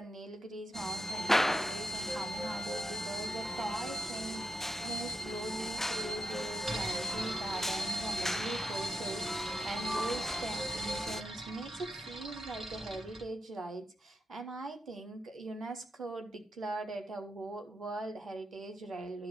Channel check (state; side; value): normal; both; correlation 0.87